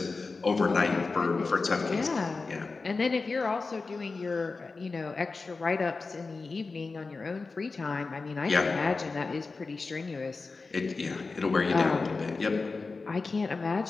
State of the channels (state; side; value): quieter; right; 4.0 dB